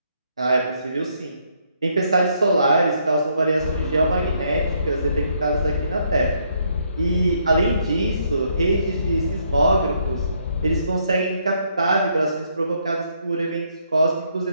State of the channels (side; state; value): both; inverted; correlation -0.72